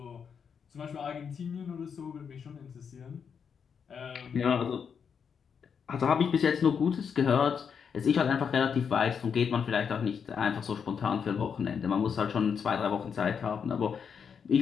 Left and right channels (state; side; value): quieter; right; 6.8 dB